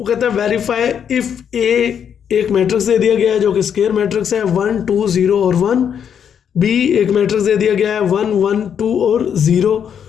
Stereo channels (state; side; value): quieter; right; 8.2 dB